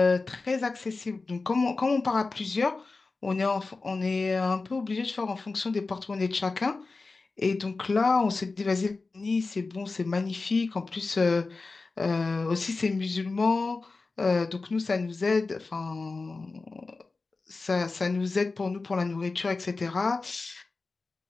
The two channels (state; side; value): quieter; right; 3.8 dB